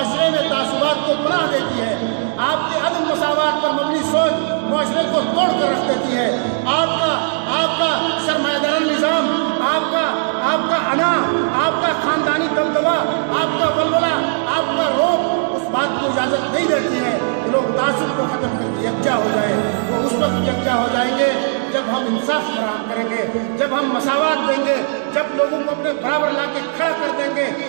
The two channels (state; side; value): silent; left; digital silence